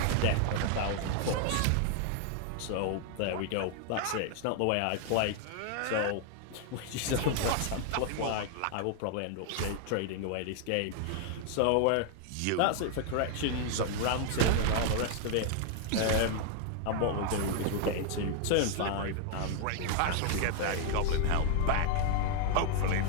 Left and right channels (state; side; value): different; both; correlation 0.00